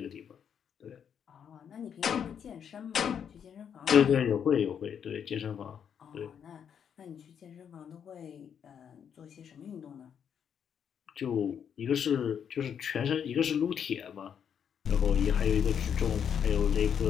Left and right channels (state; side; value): quieter; right; 8.0 dB